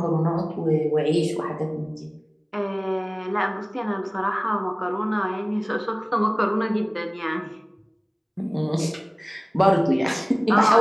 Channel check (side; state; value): both; identical; correlation 1.00